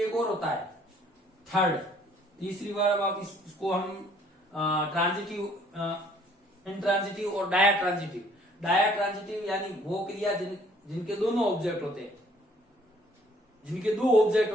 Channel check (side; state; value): both; normal; correlation 0.60